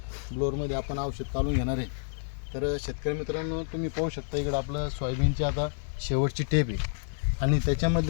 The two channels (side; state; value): right; silent; digital silence